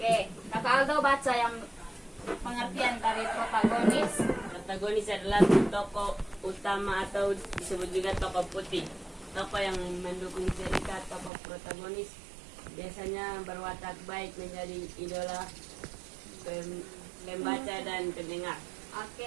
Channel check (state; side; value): drops out; left; at 11.3 s